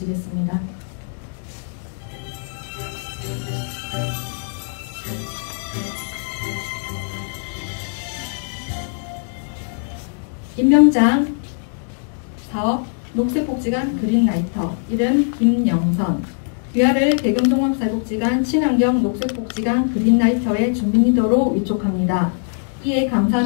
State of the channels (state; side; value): silent; right; 64 dB below the other